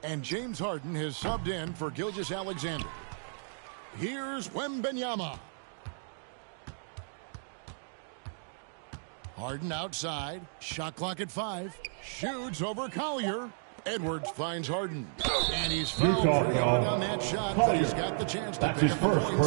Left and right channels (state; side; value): silent; left; digital silence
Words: and James Harden has subbed in for Gilgeous-Alexander. Here's Wembanyama. Harden outside. Shot clock at 5. Shoots over Collier. Edwards finds Harden. And he's fouled on that shot, but he's got the chance to pick up the